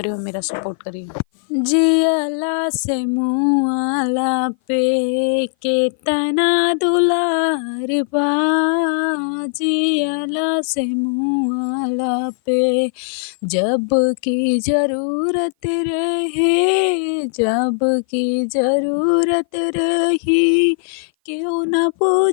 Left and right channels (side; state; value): right; silent; 57 dB below the other